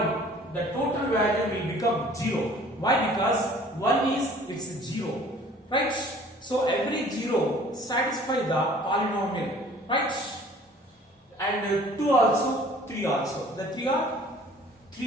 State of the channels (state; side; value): normal; both; correlation 0.51